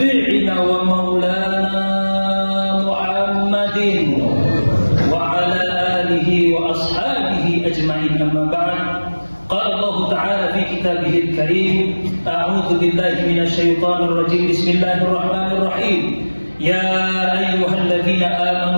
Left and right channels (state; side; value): inverted; both; correlation -1.00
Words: ومولانا محمد وعلى آله وأصحابه أجمعين. أما بعد، قال الله تعالى في كتابه الكريم: أعوذ بالله من الشيطان الرجيم. بسم الله الرحمن الرحيم. يا أيها الذين